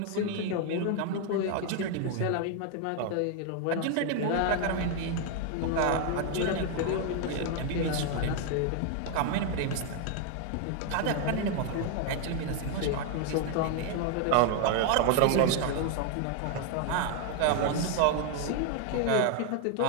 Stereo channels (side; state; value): both; different; correlation 0.01